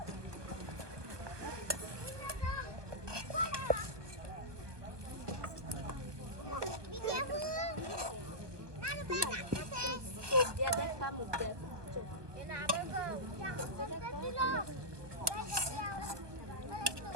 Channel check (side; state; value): left; late; 1.2 ms